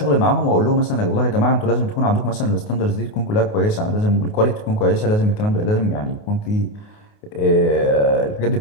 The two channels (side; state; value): right; late; 28 ms